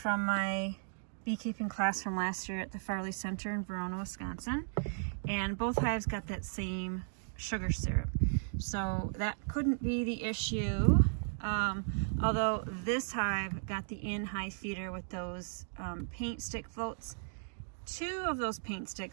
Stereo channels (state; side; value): silent; left; digital silence